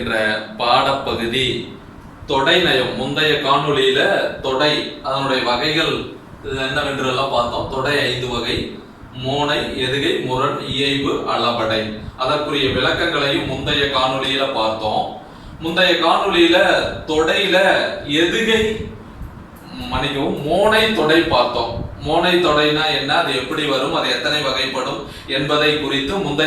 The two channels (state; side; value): identical; both; correlation 1.00